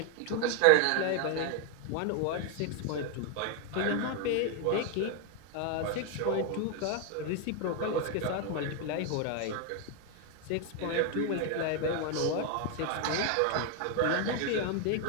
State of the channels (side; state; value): both; different; correlation 0.01